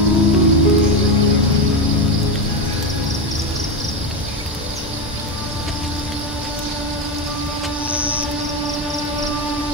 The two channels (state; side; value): normal; both; correlation 0.14